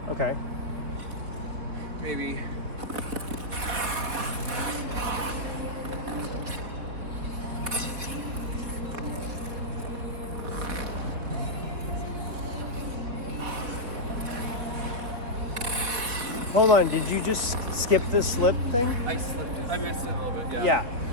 Okay. Maybe. Hold on. Did you just skip the slip thing? I slipped it. I missed it a little bit. Yeah.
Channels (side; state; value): left; late; 4.4 ms